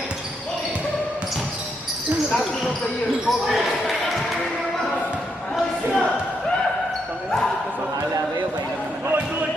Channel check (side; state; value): both; normal; correlation 0.79